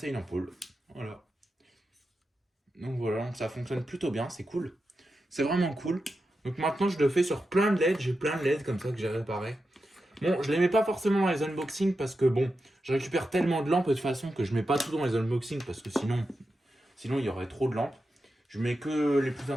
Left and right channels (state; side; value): normal; both; correlation 0.89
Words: une ampoule. Voilà. Donc voilà, donc ça fonctionne plutôt bien, c'est cool. C'est vraiment cool. Donc maintenant, je le fais sur plein de LED. J'ai plein de LED comme ça que j'ai réparé. Bon, je les mets pas forcément dans les unboxings parce que bon, je récupère tellement de lampes de toute façon que je mets pas tout dans les unboxings parce que sinon il y aurait trop de lampes. Je mets que les plus